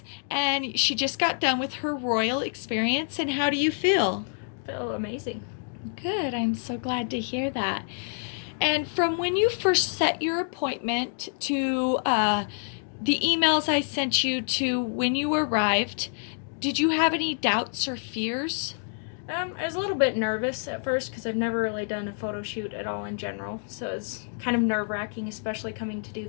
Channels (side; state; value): right; silent; 58 dB below the other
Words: and she just got done with her royal experience. And how do you feel? Feel amazing. Good. I'm so glad to hear that. And from when you first set your appointment to the emails I sent you to when you arrived, did you have any doubts or fears? I was a little bit nervous at first because I've never really done a photo shoot at all in general, so it's kind of nerve-wracking, especially coming to do